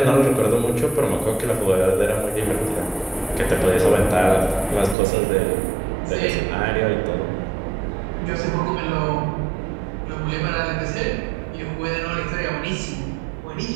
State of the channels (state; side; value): drops out; left; at 5.0 s